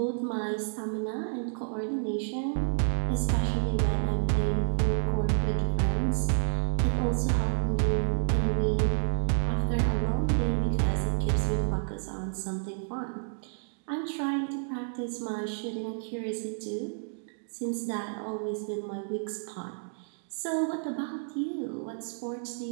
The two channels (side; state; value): left; silent; digital silence